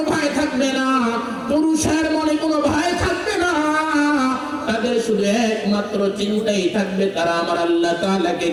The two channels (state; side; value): identical; both; correlation 1.00